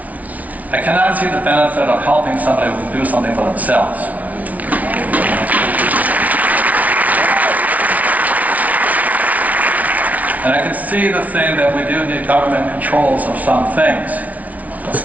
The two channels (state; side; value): late; left; 0.071 ms